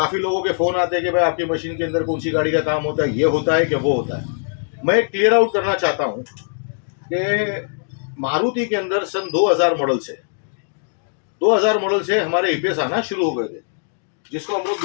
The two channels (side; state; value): right; silent; digital silence